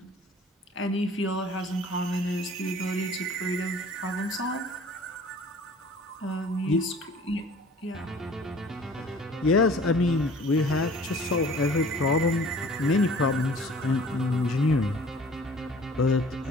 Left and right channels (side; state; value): both; normal; correlation 0.49